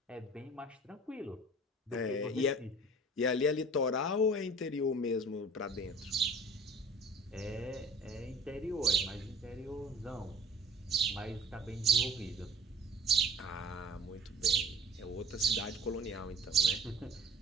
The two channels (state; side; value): normal; both; correlation 0.44